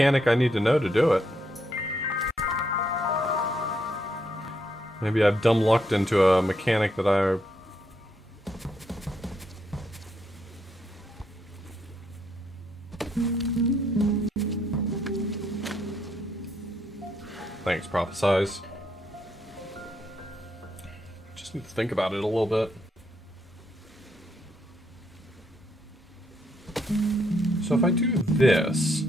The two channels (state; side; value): normal; both; correlation 0.75